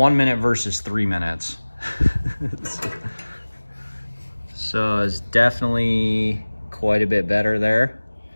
minute versus 3 minutes. So it's definitely quite a bit better there.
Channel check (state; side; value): inverted; both; correlation -1.00